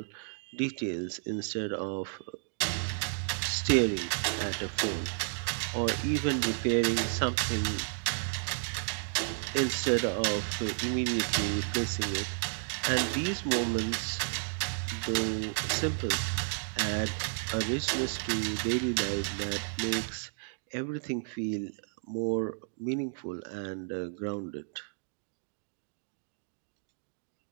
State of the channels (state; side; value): silent; left; digital silence